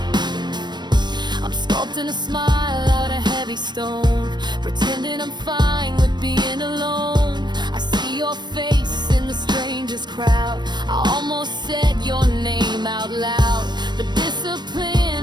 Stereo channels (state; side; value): late; left; 0.21 ms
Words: I'm sculpting a smile out of heavy stone, pretending I'm fine with being alone. I see your face in the strangest crowd. I almost said your name out loud, but